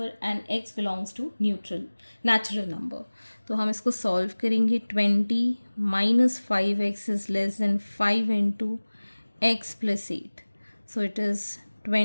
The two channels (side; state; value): both; inverted; correlation -1.00